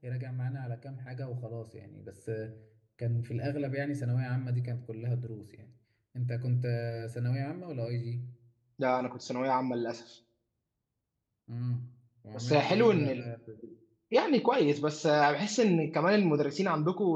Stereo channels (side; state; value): both; identical; correlation 1.00